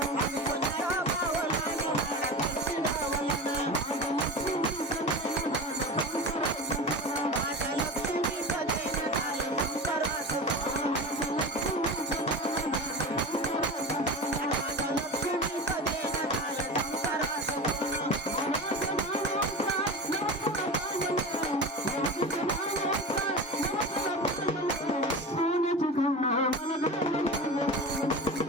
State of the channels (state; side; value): normal; both; correlation 0.29